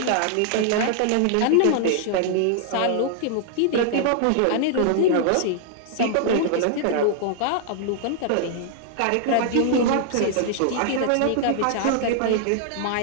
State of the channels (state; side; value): different; both; correlation -0.01